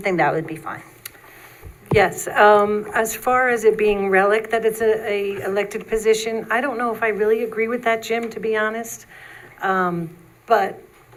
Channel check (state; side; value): identical; both; correlation 1.00